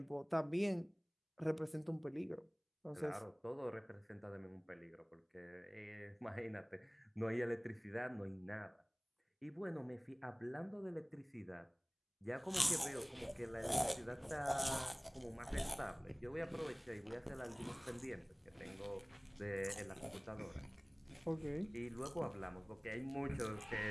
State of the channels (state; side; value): identical; both; correlation 1.00